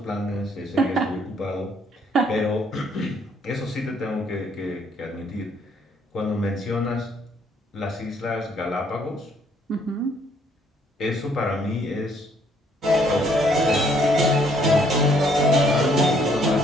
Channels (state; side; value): normal; both; correlation 0.66